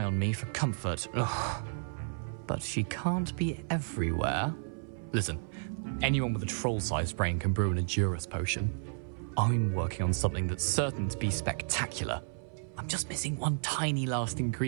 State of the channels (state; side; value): silent; left; 56 dB below the other